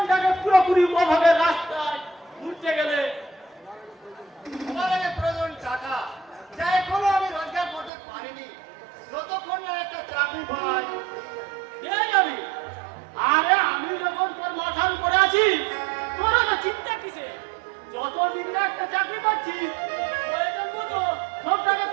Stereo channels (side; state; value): left; drops out; at 7.9 s